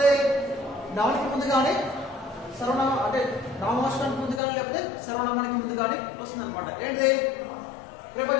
నౌన్ కి ముందు కానీ, సర్వనామం అంటే నామవాచకానికి ముందు కానీ లేకపోతే సర్వనామానికి ముందు కానీ వస్తుంది అనమాట. ఏంటిది?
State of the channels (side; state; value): right; drops out; at 4.4 s